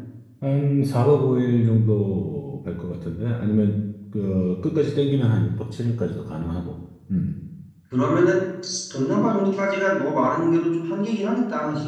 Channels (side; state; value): both; identical; correlation 1.00